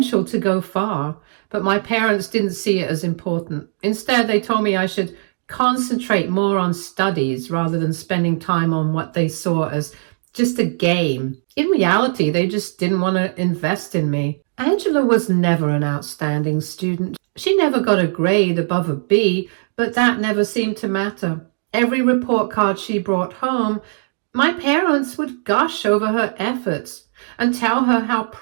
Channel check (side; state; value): left; silent; digital silence